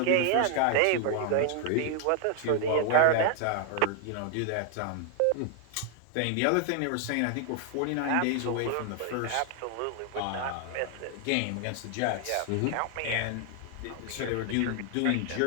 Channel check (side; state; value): both; different; correlation 0.00